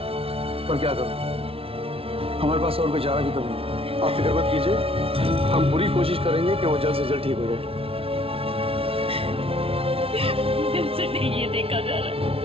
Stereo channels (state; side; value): late; left; 0.27 ms